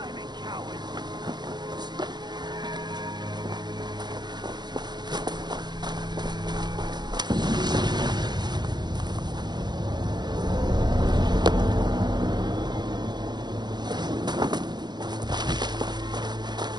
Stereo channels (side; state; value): left; late; 0.21 ms